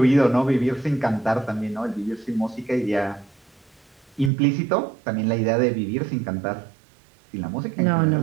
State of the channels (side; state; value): left; drops out; at 4.3 s